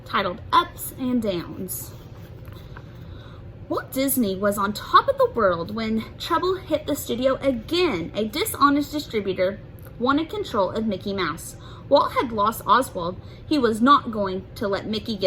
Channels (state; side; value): identical; both; correlation 1.00